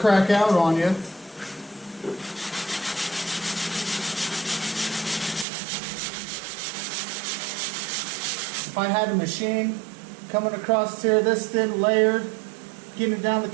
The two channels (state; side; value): drops out; left; at 5.5 s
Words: out on you. If I had a machine coming across here this thin, layered, getting it down the